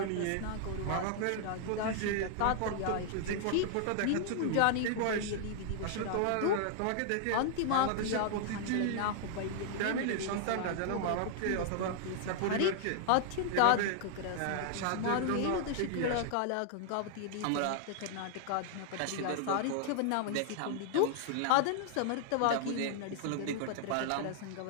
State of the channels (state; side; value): different; both; correlation 0.00